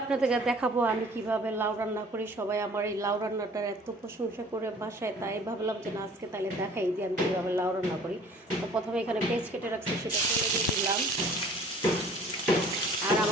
দেখাবো আমি কিভাবে লাউ রান্না করি। সবাই আমার এই লাউ রান্নাটার এত প্রশংসা করে বাসায়, তাই ভাবলাম যে না আজকে তাহলে দেখাই যে আমি কীভাবে লাউ রান্না করি। তো প্রথমে এখানে পেঁয়াজ কেটে রাখছি, সেটা তুলে দিয়ে দিলাম। আর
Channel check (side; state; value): both; normal; correlation 0.51